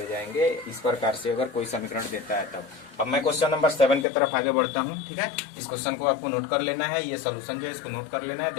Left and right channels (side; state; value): right; drops out; at 4.0 s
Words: जाएंगे, इस प्रकार से अगर कोई समीकरण देता है तब। अब मैं क्वेश्चन नंबर 7 की तरफ आगे बढ़ता हूँ। ठीक है, इस क्वेश्चन को आपको नोट कर लेना है, ये सोल्यूशन जो है इसको नोट कर लेना है,